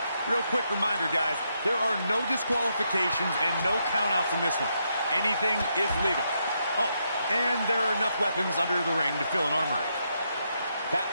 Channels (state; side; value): inverted; both; correlation -0.80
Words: Real quick reminder, guys, there are no disqualifications and no countouts in this one. Anything is legal. Oh, and there are enough weapons under the ring to fill an armory. Back